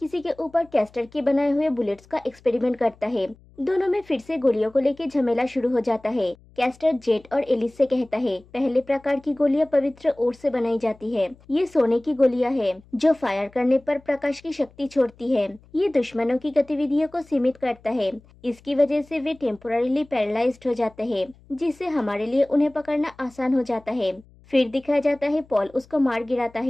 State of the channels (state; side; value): noise; left; hum, 27 dB below the sound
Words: के ऊपर कैस्टर के बनाए हुए बुलेट्स का एक्सपेरिमेंट करता है। दोनों में फिर से गोलियों को लेकर झमेला शुरू हो जाता है। कैस्टर जेट और एलिस से कहता है, पहले प्रकार की गोलियां पवित्र ओट से बनाई जाती है। ये सोने की गोलियां हैं जो फायर करने पर प्रकाश की शक्ति छोड़ती है। ये दुश्मनों की गतिविधियों को सीमित करता है। इसकी वजह से वे टेम्पोररीली पैरालाइज्ड हो जाते हैं, जिससे हमारे लिए उन्हें पकड़ना आसान हो जाता है। फिर दिखाया जाता है पॉल उसको मार गिराता